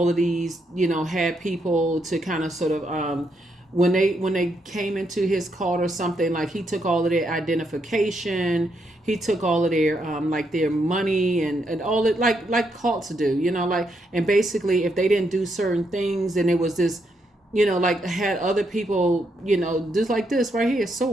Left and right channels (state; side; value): normal; both; correlation 0.78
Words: of these, had people to kind of sort of, when they came into his cult or something, like he took all of their identification, he took all of their like their money and all it like cults do, and basically if they didn't do certain things, then it was this, like had other people, just like this right here,